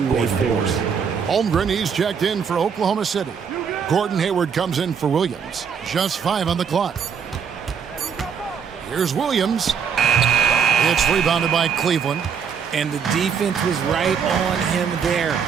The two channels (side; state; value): left; quieter; 6.9 dB